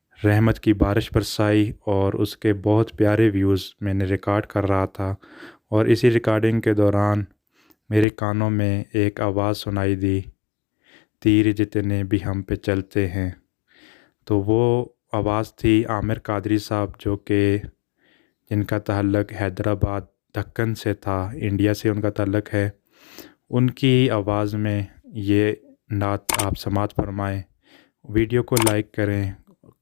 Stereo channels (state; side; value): drops out; right; at 8.1 s